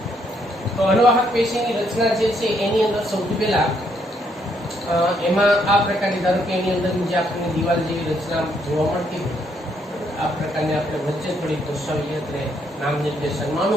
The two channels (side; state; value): both; normal; correlation 0.72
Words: તો અનુવાહક પેશીની રચના જે છે એની અંદર સૌથી પહેલા એમાં આ પ્રકારની, ધારો કે એની અંદર જે આપણને દિવાલ જેવી રચના જોવા મળતી હોય, આ પ્રકારની આપણે વચ્ચે થોડીક દર્શાવીએ એટલે નામ નિર્દેશનમાં